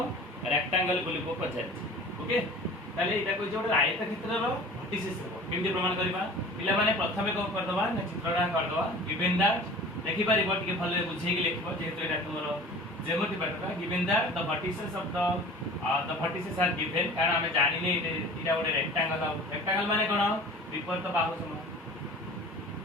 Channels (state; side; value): normal; both; correlation 0.42